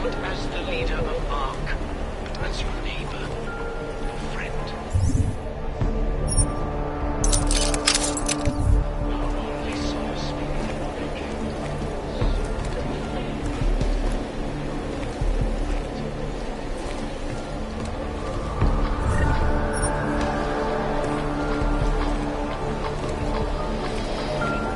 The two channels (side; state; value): both; identical; correlation 1.00